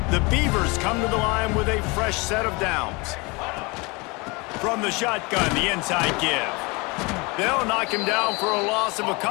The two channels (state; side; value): quieter; right; 26.8 dB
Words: The Beavers come to the line with a fresh set of downs. From the shotgun, the inside give. They'll knock him down for a loss of a